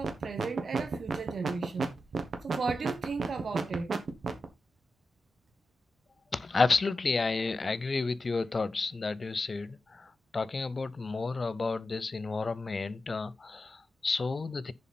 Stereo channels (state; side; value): normal; both; correlation 0.91